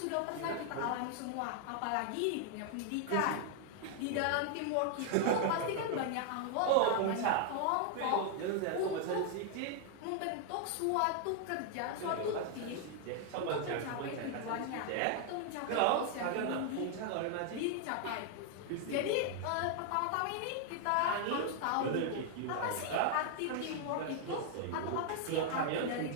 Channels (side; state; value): both; different; correlation 0.00